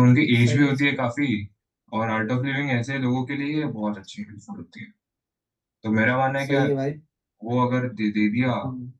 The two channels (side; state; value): both; identical; correlation 1.00